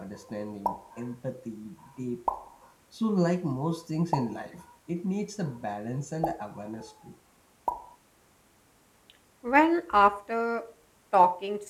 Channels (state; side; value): identical; both; correlation 1.00